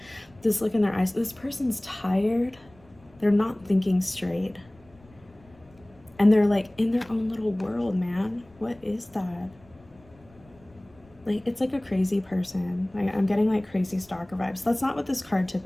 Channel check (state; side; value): noise; left; rumble, 27 dB below the sound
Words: This look in their eyes. This person's tired. They're not thinking straight. And they're like in their own little world, man. What is that? Like, it's like a crazy person. Like, I'm getting like crazy stalker vibes. That's not what this card